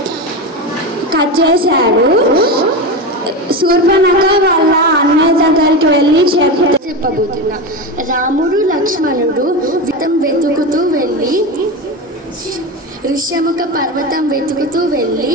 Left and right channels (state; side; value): normal; both; correlation 0.20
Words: కట్ చేశాడు. శూర్పణఖ వాళ్ళ అన్నయ్య దగ్గరికి వెళ్ళి చెప్పబోతున్నా. రాముడు లక్ష్మణుడు వెతుకుతూ వెళ్ళి ఋష్యముఖ పర్వతం వెతుకుతూ వెళ్ళి